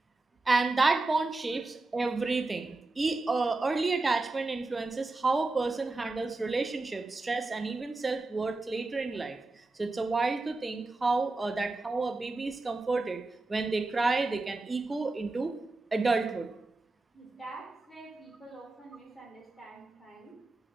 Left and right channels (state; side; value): quieter; left; 3.3 dB